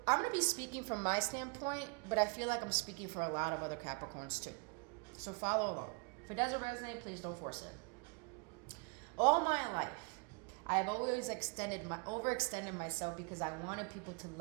I'm going to be speaking from my standpoint, but I feel like I'm speaking for a lot of other Capricorns too. So follow along. If it doesn't resonate, please don't force it. All my life, I have always overextended myself because I wanted people to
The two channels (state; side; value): quieter; left; 32.9 dB